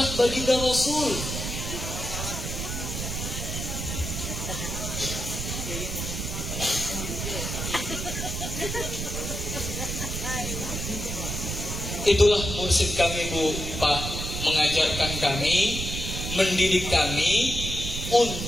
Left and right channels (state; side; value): noise; right; rumble, 4 dB below the sound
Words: baginda Rasul. Itulah mursyid kami Bu, Pak, mengajarkan kami, mendidik kami